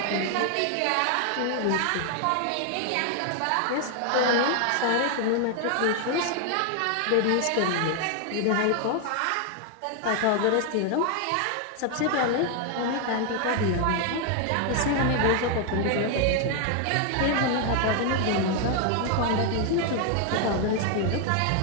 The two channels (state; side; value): different; both; correlation 0.00